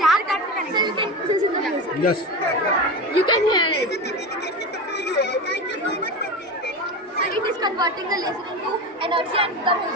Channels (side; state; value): both; normal; correlation 0.23